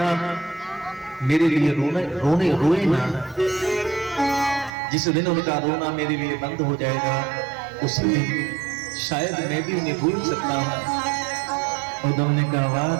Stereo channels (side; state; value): left; drops out; at 4.7 s